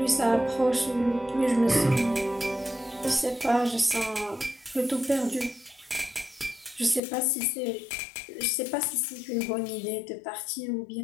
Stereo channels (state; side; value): drops out; right; at 7.0 s